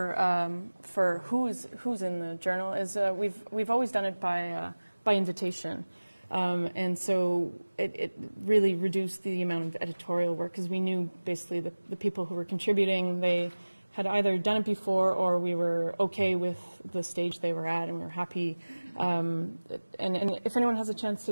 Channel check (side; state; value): both; inverted; correlation -1.00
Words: who's in the journal is we've always done it by invitation. And so it really reduced the amount of editorial work because we knew basically the people who were contributing, they had either done it before or we were okay with the stage they were at and we were happy. And if anyone has a chance